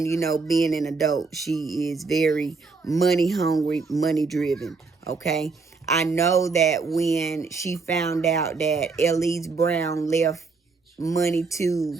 you know, being an adult, she is very money hungry, money driven. Okay, I know that when she found out that Elise Brown left money to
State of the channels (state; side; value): quieter; left; 4.3 dB